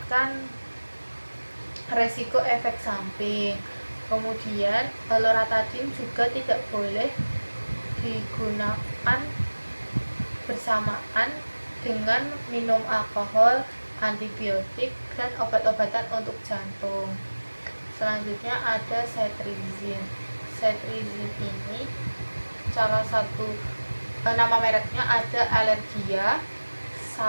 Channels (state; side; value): inverted; both; correlation -1.00